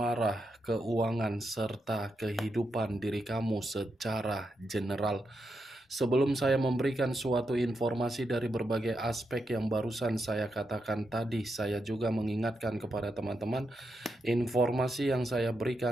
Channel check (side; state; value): both; normal; correlation 0.84